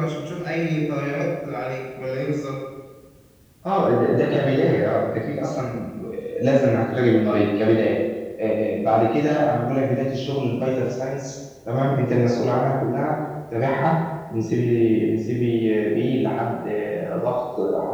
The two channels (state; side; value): identical; both; correlation 1.00